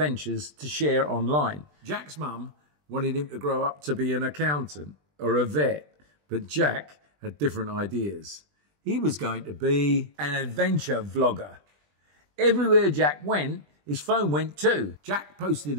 to share online. Jack's mum wanted him to grow up to be an accountant or a vet, but Jack had different ideas. He was going to be an adventure vlogger. Everywhere Jack went, his phone went too. Jack posted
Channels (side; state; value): left; late; 20 ms